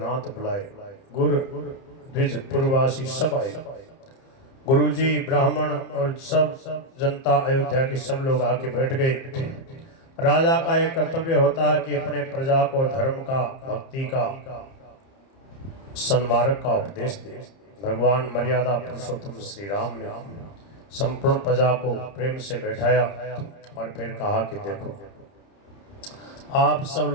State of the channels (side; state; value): right; late; 30 ms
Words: बुलाए, गुरु द्विज पूर्ववासी सब आए। गुरुजी, ब्राह्मण और सब जनता, अयोध्या के सब लोग आके बैठ गए। राजा का एक कर्तव्य होता है कि अपने प्रजा को धर्म का, भक्ति का, सन्मार्ग का उपदेश दे। भगवान मर्यादा पुरुषोत्तम श्री राम ने संपूर्ण प्रजा को प्रेम से बैठाया और फिर कहा कि देखो, आप सब